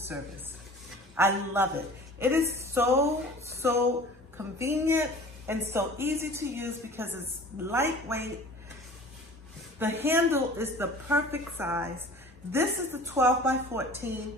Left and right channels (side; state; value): both; normal; correlation 0.44